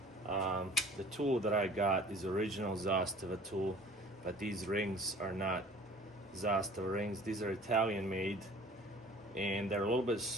The tool that I got is original Zastava tool, but these rings are not Zastava rings. These are Italian made, and they're a little bit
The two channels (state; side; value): normal; both; correlation 0.48